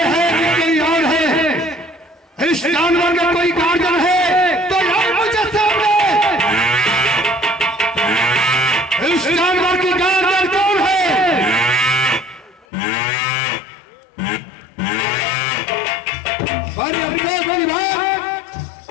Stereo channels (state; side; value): drops out; right; at 12.7 s